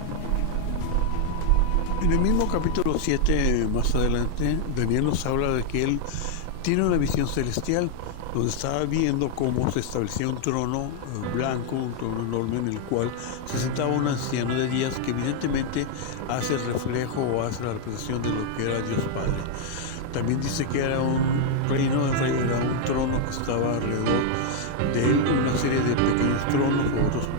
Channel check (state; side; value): different; both; correlation 0.00